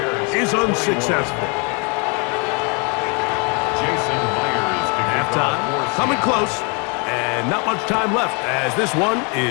is unsuccessful. Halftime coming close, and not much time left as this one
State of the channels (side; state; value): right; quieter; 33.5 dB